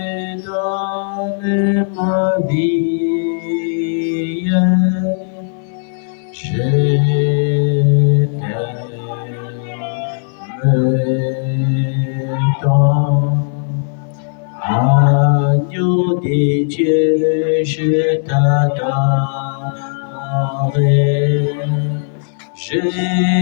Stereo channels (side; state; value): right; silent; 63 dB below the other